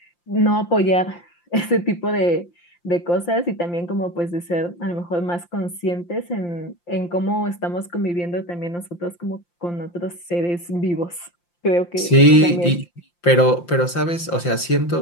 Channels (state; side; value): late; right; 5.8 ms